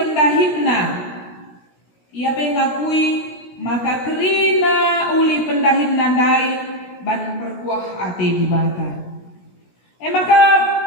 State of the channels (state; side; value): late; right; 17 ms